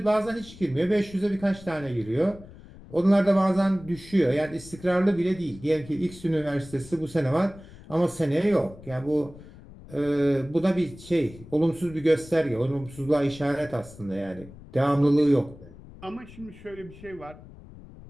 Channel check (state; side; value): noise; left; rumble, 19 dB below the sound